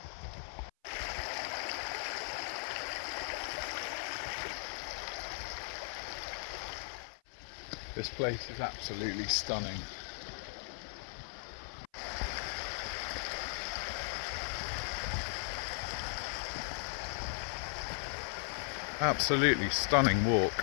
This place is absolutely stunning. Absolutely stunning walk.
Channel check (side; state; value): right; silent; 53 dB below the other